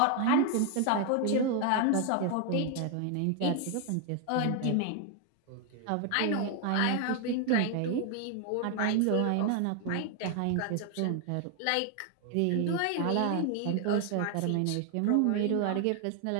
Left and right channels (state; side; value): different; both; correlation 0.00